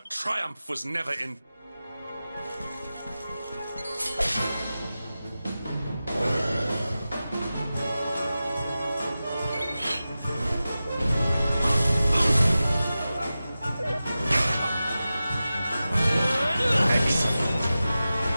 triumph was never in...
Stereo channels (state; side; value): inverted; both; correlation -0.94